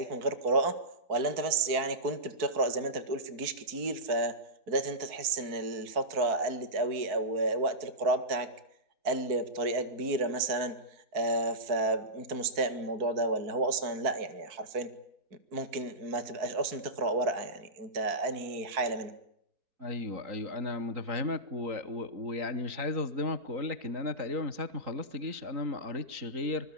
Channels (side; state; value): left; late; 4.6 ms